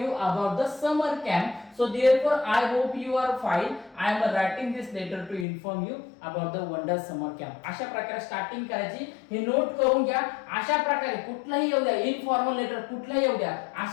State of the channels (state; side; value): drops out; right; at 5.5 s